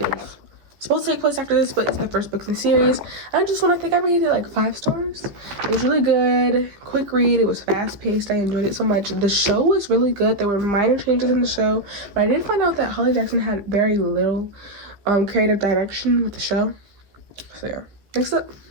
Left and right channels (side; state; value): left; late; 15 ms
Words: supposed to take place after this, but it's the first book in the series. I think I rated it like 5 stars. It was really good, quick read. It was fast paced. I enjoyed it so much. The show was really good. There were minor changes in the show, but I did find out that Holly Jackson had very little creative direction with the show. So yeah. Next up